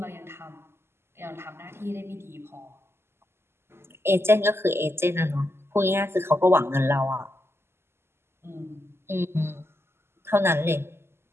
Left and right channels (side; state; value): left; late; 0.12 ms